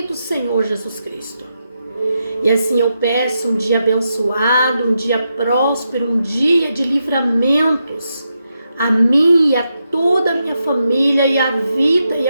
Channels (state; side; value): inverted; both; correlation -0.85